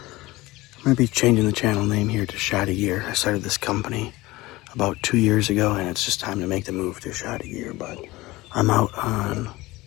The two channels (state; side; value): quieter; right; 19.9 dB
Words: I'm going to be changing the channel name here to Shotty Gear. I started this company about 2 years ago, and it's just time to make the move to Shotty Gear. But I'm out on